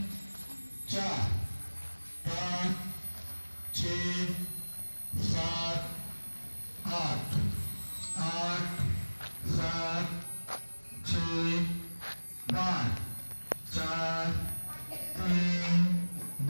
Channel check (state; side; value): inverted; both; correlation -1.00